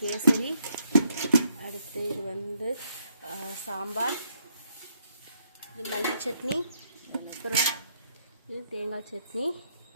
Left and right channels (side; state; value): both; inverted; correlation -0.72